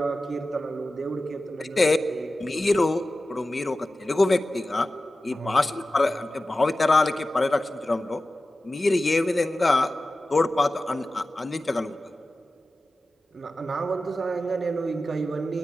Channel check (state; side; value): normal; both; correlation 0.94